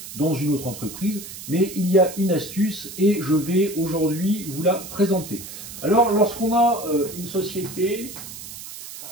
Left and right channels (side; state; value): right; noise; hiss, 12 dB below the sound